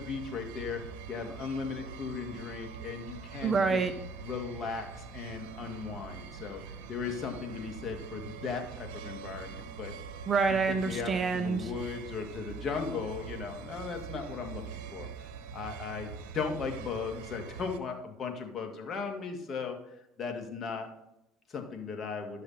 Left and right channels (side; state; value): both; normal; correlation 0.53